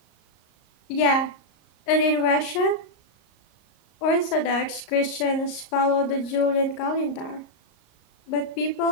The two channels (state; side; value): late; right; 34 ms